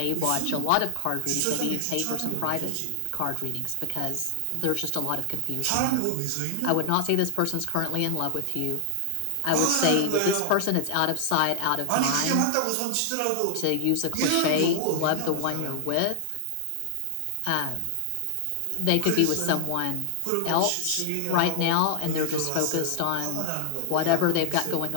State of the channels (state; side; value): different; both; correlation 0.00